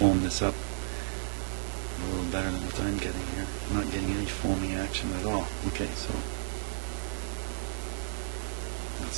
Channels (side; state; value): left; silent; digital silence